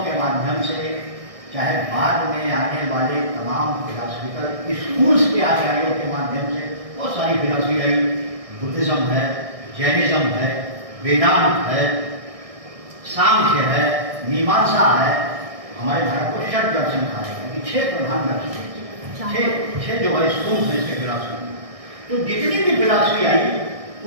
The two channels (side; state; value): left; late; 1.6 ms